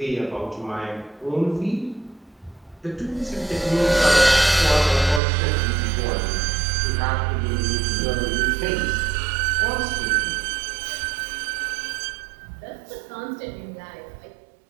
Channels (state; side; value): drops out; left; at 5.2 s